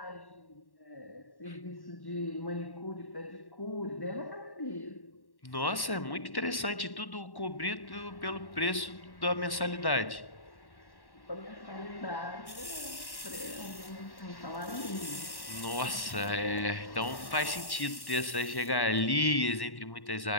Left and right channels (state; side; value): late; right; 1.1 ms